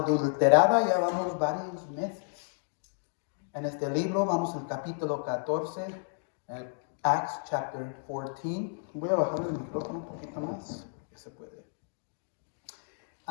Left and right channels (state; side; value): silent; right; digital silence